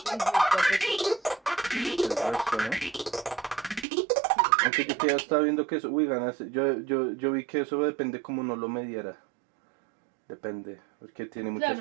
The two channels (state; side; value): drops out; left; at 3.9 s